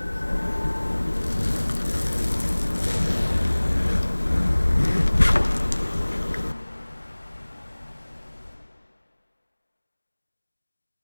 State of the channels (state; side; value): inverted; both; correlation -1.00